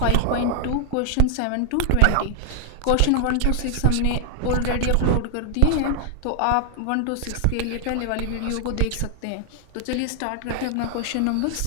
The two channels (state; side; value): different; both; correlation 0.00